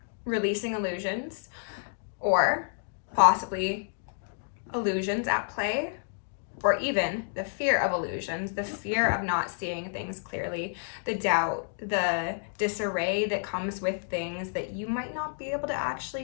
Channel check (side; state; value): right; silent; digital silence